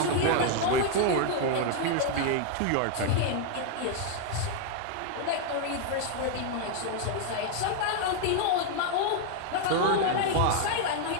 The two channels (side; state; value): both; different; correlation 0.00